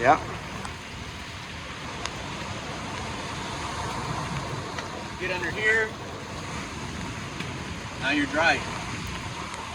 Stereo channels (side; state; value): both; identical; correlation 1.00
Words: Yeah. Get under here. Now you're dry.